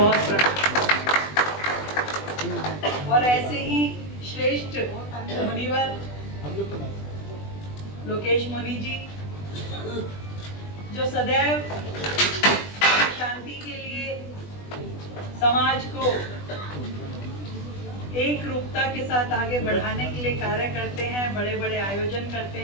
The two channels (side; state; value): right; late; 20 ms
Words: प्रणाम। और ऐसे ही श्रेष्ठ मुनिवर लोकेश मुनि जी, जो सदैव शांति के लिए समाज को एक रूपता के साथ आगे बढ़ाने के लिए कार्य करते हैं, बड़े बड़े आयोजन करते